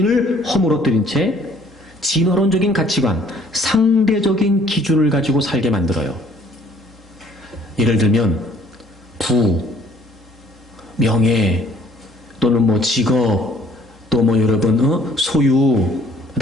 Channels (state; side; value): normal; both; correlation 0.58